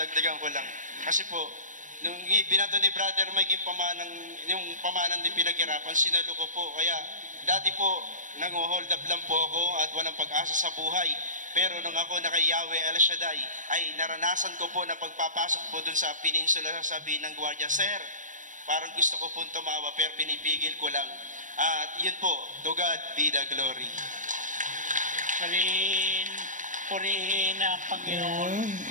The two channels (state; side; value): late; left; 0.37 ms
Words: ko lang. Kasi po, nung binato ni Brother Mike yung pamanan di pinaghirapan, sinalo ko po. Kaya dati po, nang-hold up lang po ako at walang pag-asa sa buhay. Pero nung ako na kay Yahweh El Shaddai, ay naranasan ko po na pagpapasok po dun sa peninsula, sasabihin ng gwardiya, Sir, parang gusto ko po tumawa pero pinipigil ko lang. At yun po, to God be the glory. Purihin ang Panginoon.